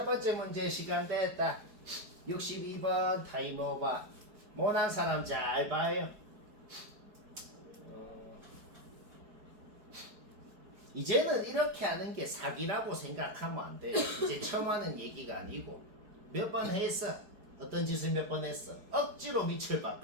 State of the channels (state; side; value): late; left; 4.7 ms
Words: 번째 문제 시간 됐다. 62번 타임오버. 못한 사람 잘 봐요. 이제는 이렇게 하는 게 사기라고 생각하면 안 돼요. 이제 처음 하는 얘기가 아니고 몇 번 했어. 어떤 짓을 몇 번 했어. 억지로 밑을